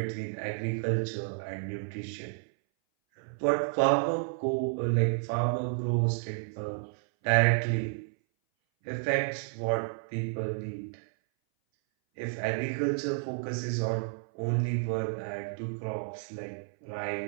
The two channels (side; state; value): left; silent; 57 dB below the other